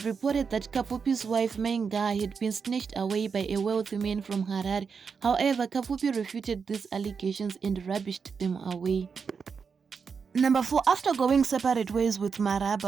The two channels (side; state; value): left; quieter; 5.8 dB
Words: reported that Kapfupi's wife Mainga had been snatched away by a wealthy man from Harare. However, Kapfupi refuted these allegations and rubbished them away. Number 4. After going separate ways with